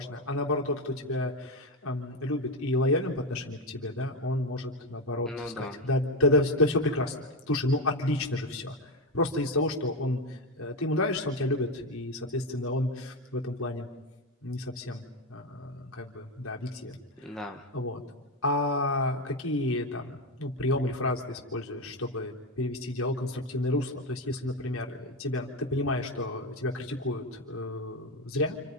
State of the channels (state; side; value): normal; both; correlation 0.12